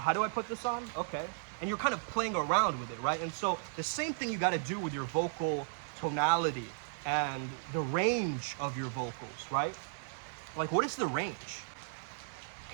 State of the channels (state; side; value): silent; left; digital silence